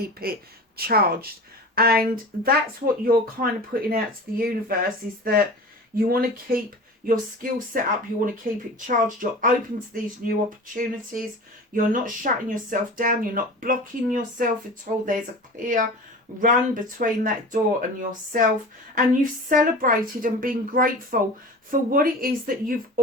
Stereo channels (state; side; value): normal; both; correlation 0.35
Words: it charged. And that's what you're kind of putting out to the universe, is that you want to keep your skill set up, you want to keep it charged, you're open to these new opportunities, you're not shutting yourself down, you're not blocking yourself at all. There's a clear run between that door and yourself, and you've celebrated and been grateful for what it is that you've